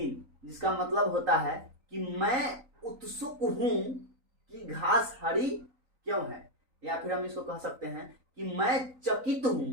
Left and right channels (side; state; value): left; late; 3.9 ms